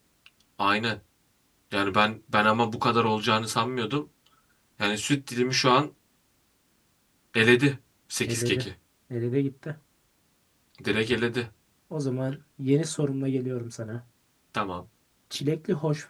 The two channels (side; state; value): both; identical; correlation 1.00